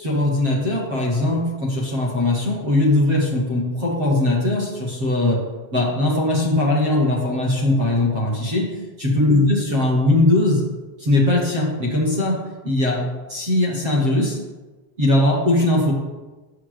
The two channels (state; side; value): late; left; 7.5 ms